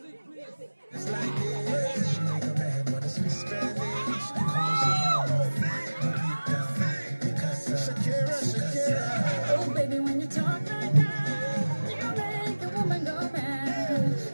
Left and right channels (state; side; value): inverted; both; correlation -1.00